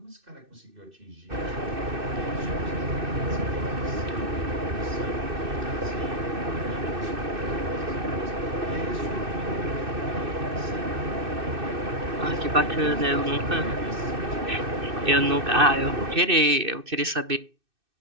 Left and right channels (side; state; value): left; late; 2.6 ms